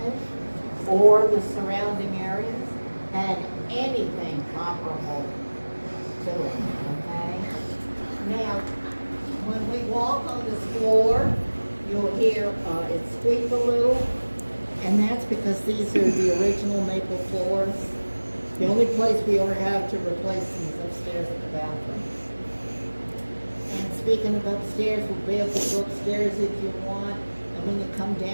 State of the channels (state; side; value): inverted; both; correlation -1.00